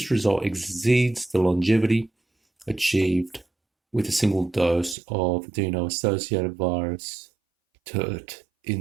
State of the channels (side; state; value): left; drops out; at 5.0 s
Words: result exceeds the longevity achieved with a single dose of adeno-associated virus, TERT,